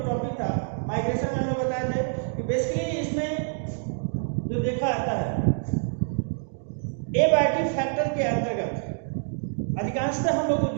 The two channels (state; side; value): silent; left; digital silence